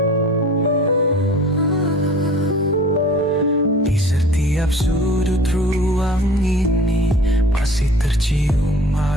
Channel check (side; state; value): both; normal; correlation 0.45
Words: Di setiap sudut ruang ini masih tercium